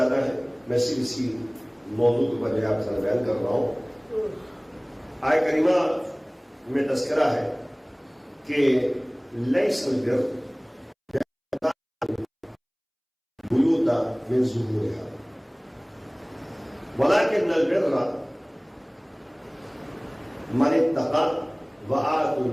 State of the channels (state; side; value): identical; both; correlation 1.00